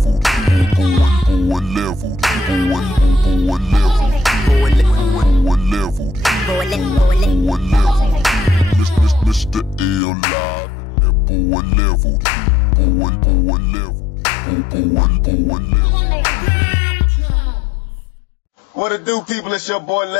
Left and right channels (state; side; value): drops out; right; at 10.0 s